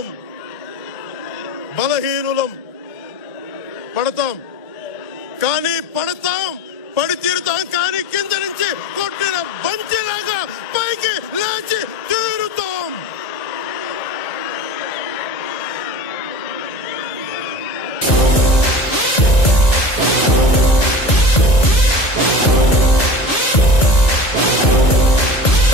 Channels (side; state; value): right; late; 1.9 ms